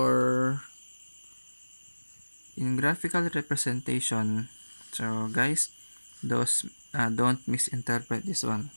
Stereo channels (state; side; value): inverted; both; correlation -1.00